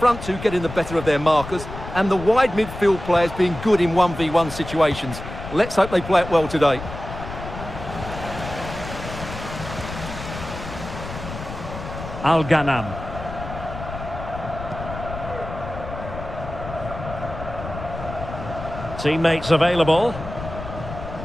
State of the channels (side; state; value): left; noise; rumble, 10 dB below the sound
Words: two getting the better of their markers, and the wide midfield players being good in 1v1 situations. Let's hope they play it well today. Al-Ghanam. Teammates available.